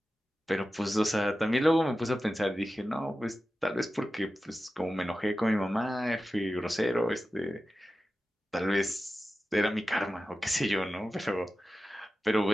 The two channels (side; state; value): both; normal; correlation 0.94